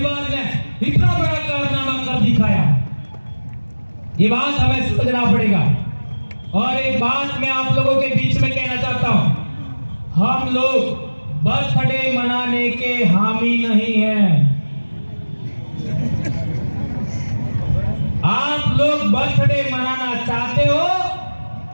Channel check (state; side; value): inverted; both; correlation -1.00